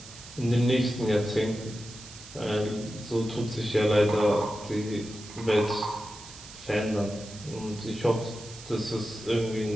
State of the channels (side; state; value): right; noise; hiss, 16 dB below the sound